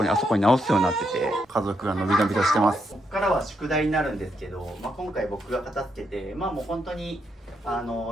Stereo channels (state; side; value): normal; both; correlation 0.79